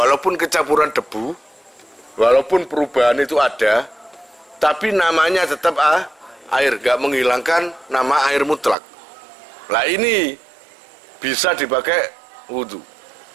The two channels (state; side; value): drops out; left; at 8.8 s